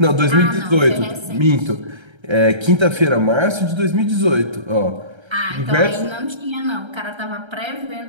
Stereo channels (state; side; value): late; left; 1.3 ms